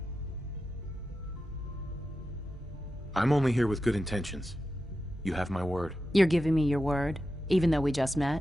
I'm only here with good intentions. You have my word. You're giving me your word, even though we just met?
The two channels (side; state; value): both; normal; correlation 0.91